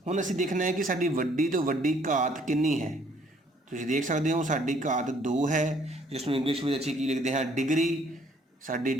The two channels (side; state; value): both; normal; correlation 0.62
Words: हुण असीं देखना है कि साडी वड्डी तो वड्डी घात कितनी है। तुसीं देख सकते हो साडी घात 2 है, जिसनूं इंग्लिश में असीं की लिखते हैं डिग्री। साडी